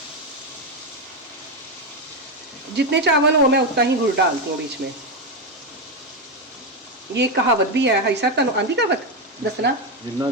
जितने चावल हो मैं उतना ही गुड़ डालती हूँ बीच में। ये कहावत भी है, हाई साहब तुम आंधी कहावत दसना, जिन्ना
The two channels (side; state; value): both; normal; correlation 0.08